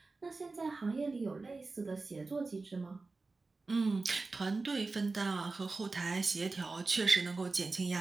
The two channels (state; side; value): quieter; left; 3.7 dB